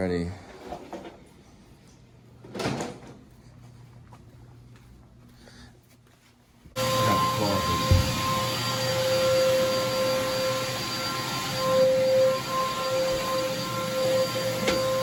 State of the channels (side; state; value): both; identical; correlation 1.00